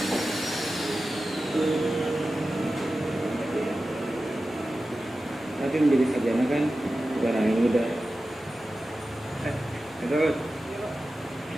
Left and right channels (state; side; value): normal; both; correlation 0.94